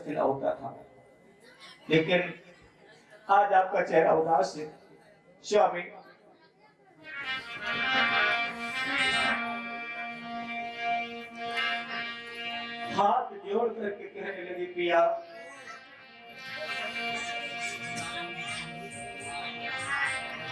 होता था, लेकिन आज आपका चेहरा उदास है। स्वामी, हाथ जोड़ करके कहने लगी, पिया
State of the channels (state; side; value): identical; both; correlation 1.00